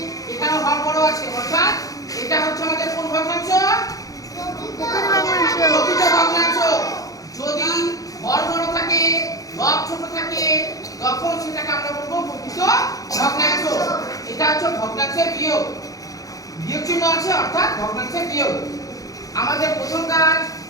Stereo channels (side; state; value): right; late; 0.17 ms